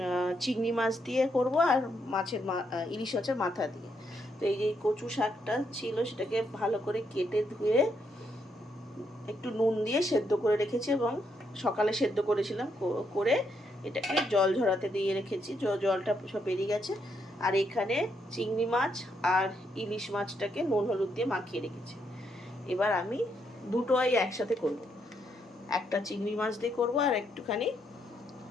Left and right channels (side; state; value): both; normal; correlation 0.77